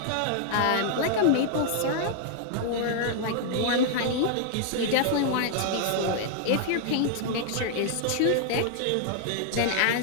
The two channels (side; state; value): both; different; correlation 0.00